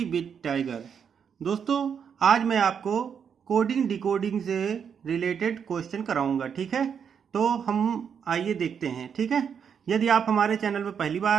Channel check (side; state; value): left; quieter; 7.3 dB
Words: with tiger. दोस्तों, आज मैं आपको कोडिंग डिकोडिंग से रिलेटेड क्वेश्चन कराऊंगा। ठीक है, तो हम आइए देखते हैं। ठीक है, यदि आप हमारे चैनल पर पहली बार आ